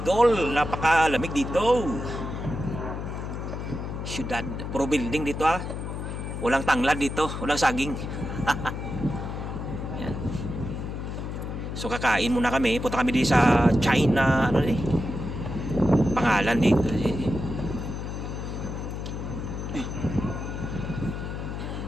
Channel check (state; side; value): noise; left; hum, 5 dB below the sound